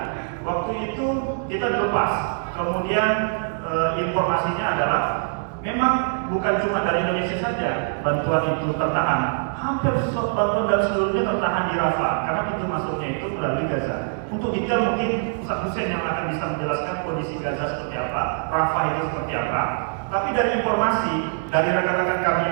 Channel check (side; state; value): left; silent; digital silence